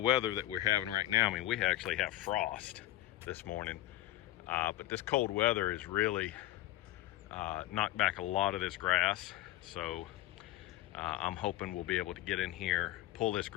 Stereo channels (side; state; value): right; quieter; 14.7 dB